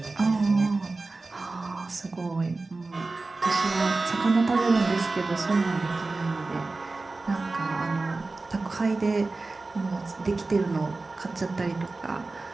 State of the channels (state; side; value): quieter; left; 3.5 dB